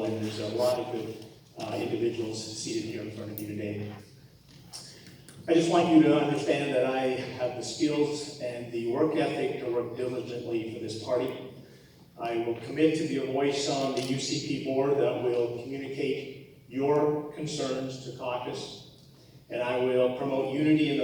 and there's a lot of good individuals seated here in front of you today. I just want you to understand that I have the skills and the work ethic to work diligently for this party. I will commit to be a voice on the UCP board that will communicate your concerns to caucus, and I will promote unity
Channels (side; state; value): both; identical; correlation 1.00